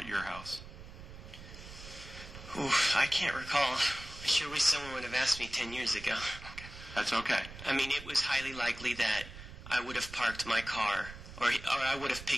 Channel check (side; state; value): right; noise; rumble, 14 dB below the sound